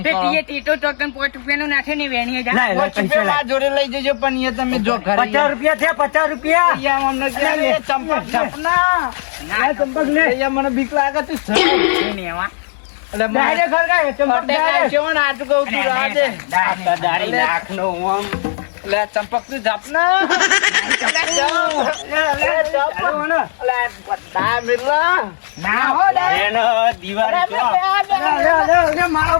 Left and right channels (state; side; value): silent; right; digital silence